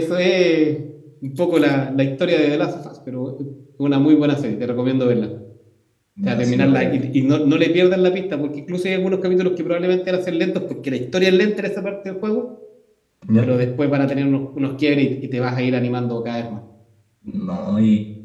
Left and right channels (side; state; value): both; identical; correlation 1.00